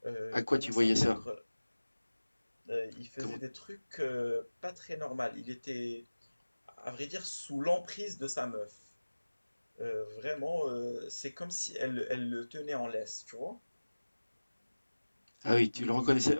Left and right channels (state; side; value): inverted; both; correlation -1.00